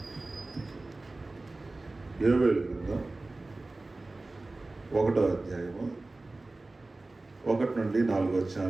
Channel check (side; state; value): left; quieter; 3.1 dB